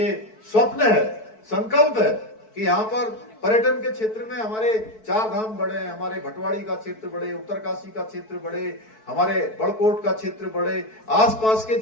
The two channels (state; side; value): late; right; 4.6 ms